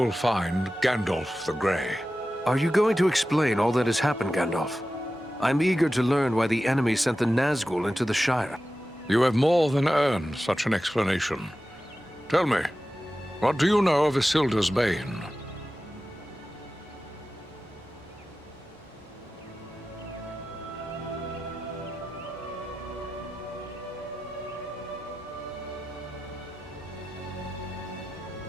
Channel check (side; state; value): both; normal; correlation 0.94